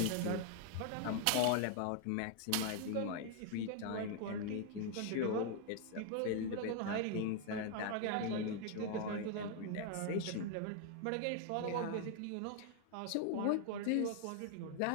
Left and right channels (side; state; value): both; different; correlation 0.00